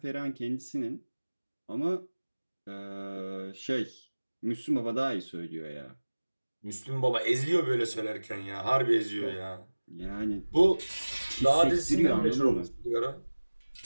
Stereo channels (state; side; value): inverted; both; correlation -1.00